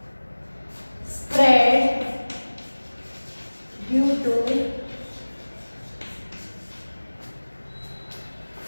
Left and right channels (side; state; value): both; inverted; correlation -1.00